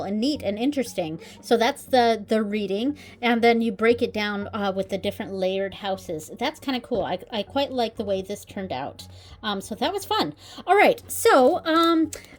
and neat and interesting. So that's the reading, and then you break it down with the different layered houses. That's kind of cool. I quite like the way this turned out. So that was fun. All right, so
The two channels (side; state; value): both; identical; correlation 1.00